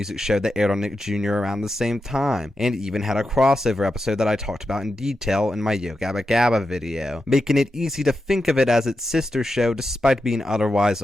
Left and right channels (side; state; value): both; normal; correlation 0.89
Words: show that aired on Nick Jr. around the same time, and even had a crossover episode that I talked about in detail in my Yo Gabba Gabba video, making it easy to think of it as its sister show despite being otherwise